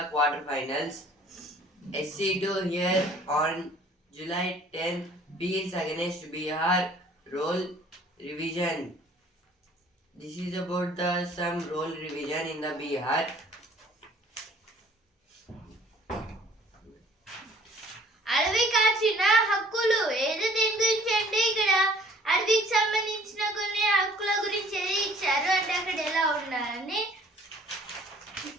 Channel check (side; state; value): both; normal; correlation 0.55